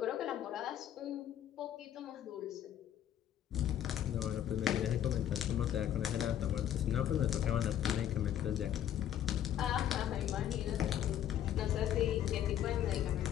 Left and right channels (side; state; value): right; quieter; 10.7 dB